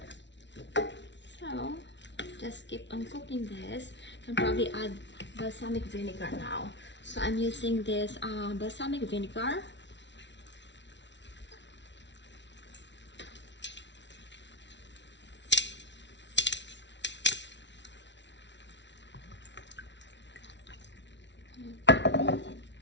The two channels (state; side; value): late; right; 0.52 ms